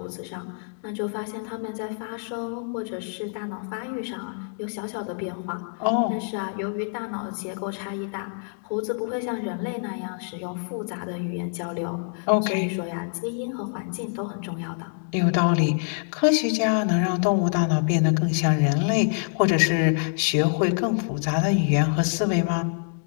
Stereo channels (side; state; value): right; silent; 61 dB below the other